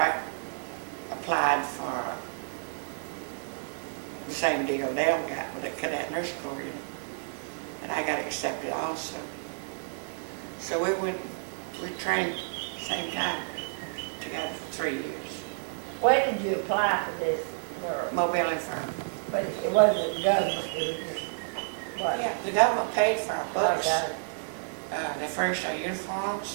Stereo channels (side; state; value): left; silent; digital silence